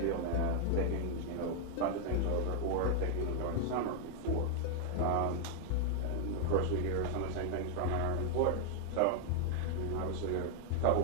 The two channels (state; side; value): different; both; correlation 0.00